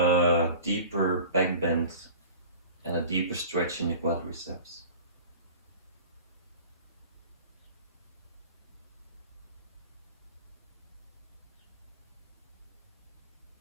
deeper back bend and a deeper stretch in the quadriceps.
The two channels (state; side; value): inverted; both; correlation -0.40